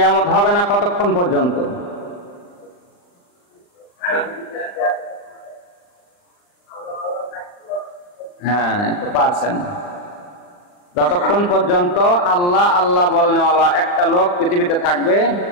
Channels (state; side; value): late; right; 40 ms